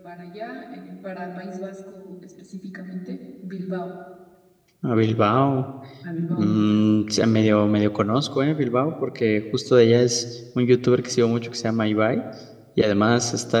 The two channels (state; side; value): identical; both; correlation 1.00